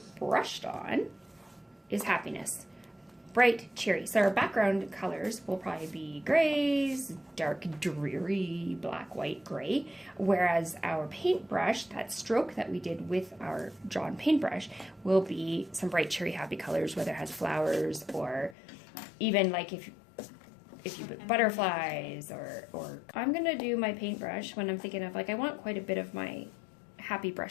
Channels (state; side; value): drops out; right; at 18.6 s